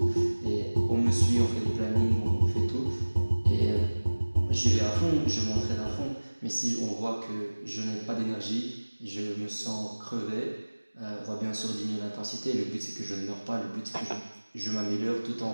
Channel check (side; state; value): both; inverted; correlation -1.00